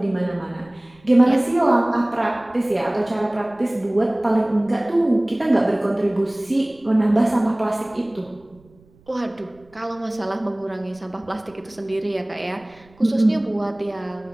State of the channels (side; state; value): right; noise; rumble, 29 dB below the sound